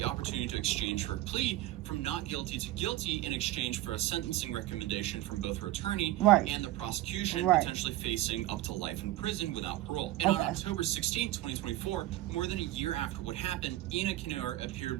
opportunity to exchange her plea from not guilty to guilty in exchange for a sentencing recommendation from both her attorney and the prosecution, potentially facing up to life in prison without parole. And on October 16, 2024, more than a year after what happened, Ina Kinoer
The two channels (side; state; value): left; quieter; 15.8 dB